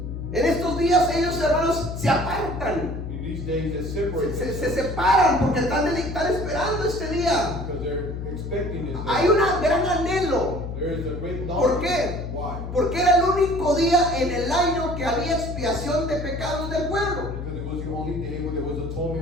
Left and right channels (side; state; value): left; noise; hum, 6 dB below the sound